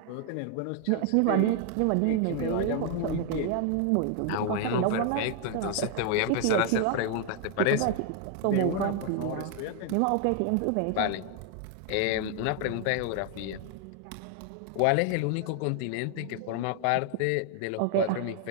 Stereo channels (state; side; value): different; both; correlation 0.00